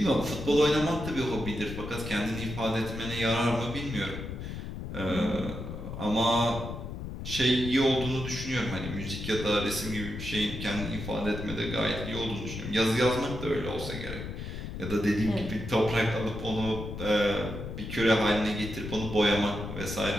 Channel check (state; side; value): noise; left; rumble, 7 dB below the sound